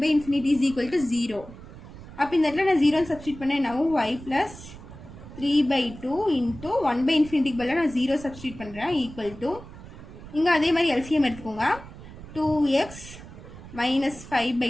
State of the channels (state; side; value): noise; right; rumble, 16 dB below the sound